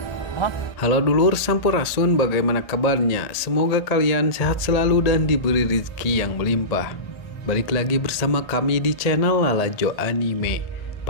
Halo dulur Sampurasun, bagaimana kabarnya? Semoga kalian sehat selalu dan diberi rezeki yang melimpah. Balik lagi bersama kami di channel Lalajo Anime.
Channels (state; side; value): late; right; 1.8 ms